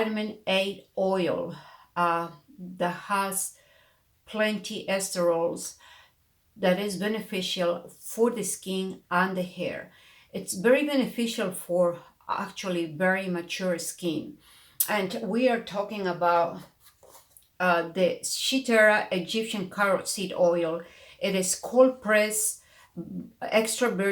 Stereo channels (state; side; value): identical; both; correlation 1.00